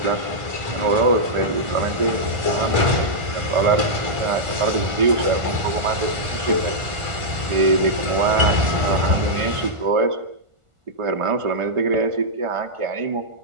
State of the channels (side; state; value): left; late; 1.5 ms